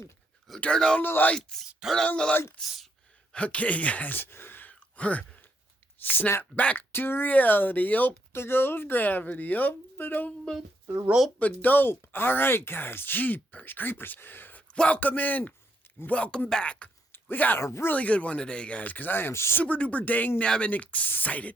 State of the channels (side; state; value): both; normal; correlation 0.75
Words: Turn on the lights. Okay, guys. We're snap back to reality. Up there goes gravity. Up and up, the rope and dope. All right, guys. Jeepers creepers. Welcome in. Welcome back. We got a really good one today, guys, because I am super duper dang nabbing excited.